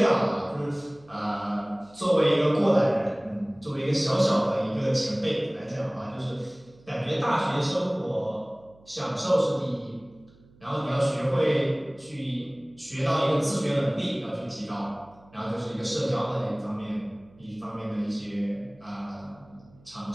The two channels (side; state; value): right; noise; hum, 27 dB below the sound